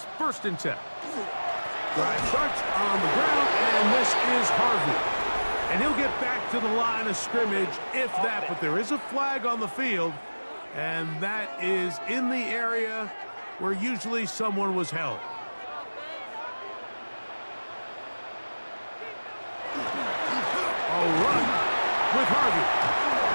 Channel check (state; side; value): inverted; both; correlation -1.00